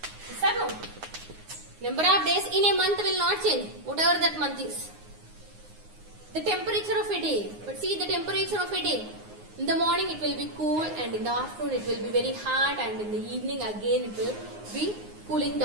Yes or no? Number of days in a month will not change, whatever that month is. The temperature of a day. But see the temperature of a day. In the morning it will be cool and in the afternoon it will be very hot and in the evening again it will be cooling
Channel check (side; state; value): left; late; 9.6 ms